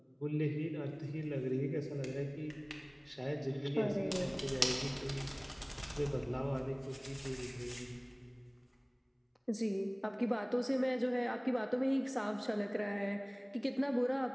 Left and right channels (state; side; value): identical; both; correlation 1.00